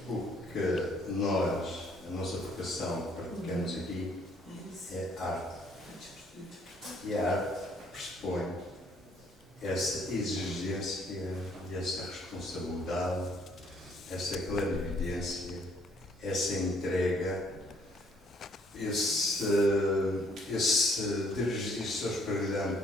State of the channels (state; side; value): normal; both; correlation 0.64